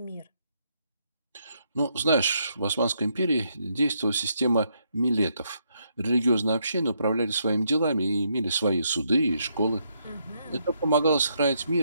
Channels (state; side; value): inverted; both; correlation -0.76